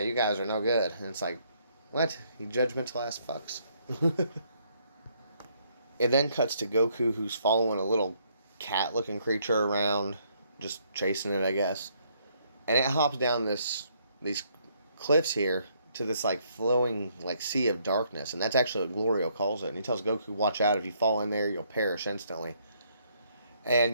guys are no good. And it's like, what? You judgmental ass fucks. It then cuts to Goku, who's following a little cat-looking creature around, just chasing it, I guess. And it hops down these cliffs here to this like flowing like sea of darkness, and that's actually what Glorio calls it. And he tells Goku, "Watch out! If you fall in there, you'll perish instantly."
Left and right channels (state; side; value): inverted; both; correlation -0.69